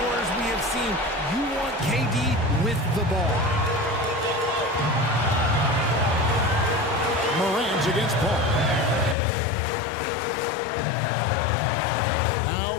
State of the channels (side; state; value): right; drops out; at 9.2 s